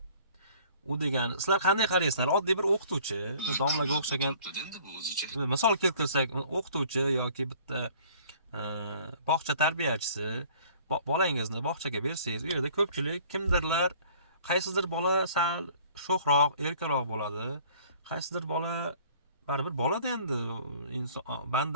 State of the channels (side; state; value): both; inverted; correlation -0.53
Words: U degani, sizlar qanday qaraysizlar? Oddiy bir o'qituvchi, domlaga o'xshagan. endi bu o'zicha. Misol keltirsak, o'qituvchi yoki bitta bog'cha tarbiyachisi bolangizni bog'chaga bersangiz, u yerda ko'pchilik kimdirlar, qaysidir bola sal sho'xroq, erkaroq bo'ladi. Qaysidir bola baribir bo'ladi endi, inson